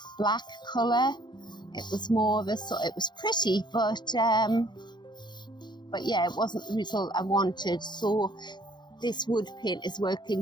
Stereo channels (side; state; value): right; late; 0.22 ms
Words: black colour. It was more of a sort. It was pretty, but yeah, it wasn't the result I wanted. So this wood paint is